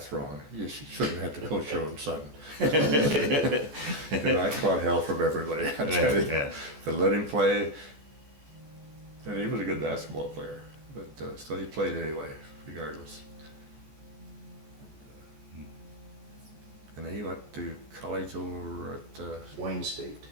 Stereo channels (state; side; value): late; left; 14 ms